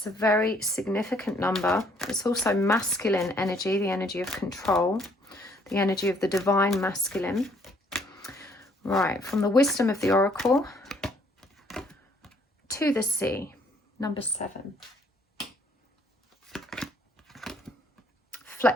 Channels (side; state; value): both; normal; correlation 0.64